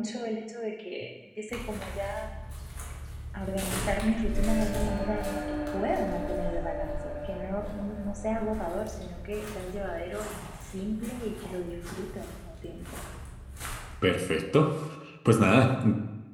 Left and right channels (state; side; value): identical; both; correlation 1.00